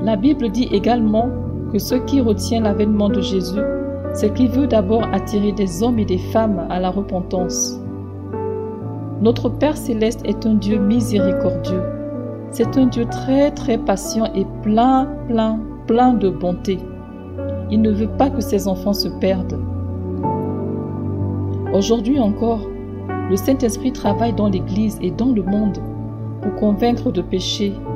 La Bible dit également que ce qui retient l'avènement de Jésus, c'est qu'il veut d'abord attirer des hommes et des femmes à la repentance. Notre Père céleste est un Dieu miséricordieux. C'est un Dieu très patient et plein de bonté. Il ne veut pas que ses enfants se perdent. Aujourd'hui encore, le Saint-Esprit travaille dans l'Église et dans le monde pour convaincre de péché,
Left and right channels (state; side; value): identical; both; correlation 1.00